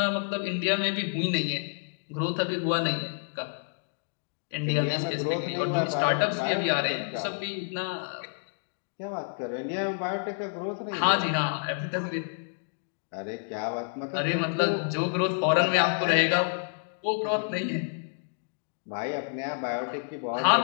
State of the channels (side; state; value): right; silent; digital silence